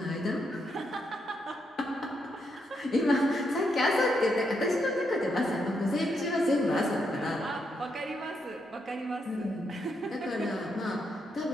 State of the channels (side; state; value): both; normal; correlation 0.80